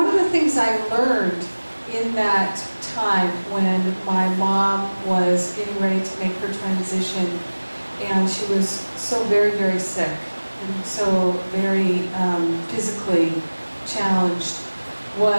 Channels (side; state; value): both; inverted; correlation -1.00